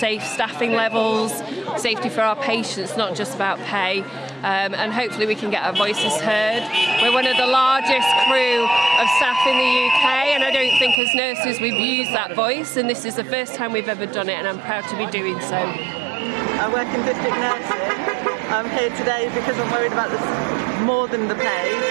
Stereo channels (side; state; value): left; drops out; at 11.0 s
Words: staffing levels, safety for our patients, not just about pay, and hopefully we can get our voices heard. We're one of the largest crew of staff in the UK, and I don't think as nurses we've used that voice, and this is the first time we've ever done it, and I'm proud to be doing so. I work in district nursing. I'm here today because I'm worried about this more than the pay,